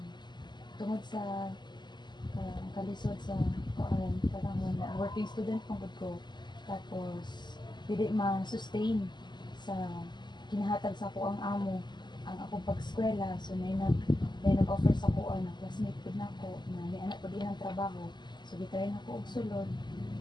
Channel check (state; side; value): late; right; 0.21 ms